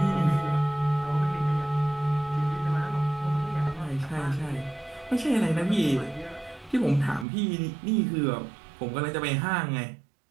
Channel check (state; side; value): drops out; left; at 7.2 s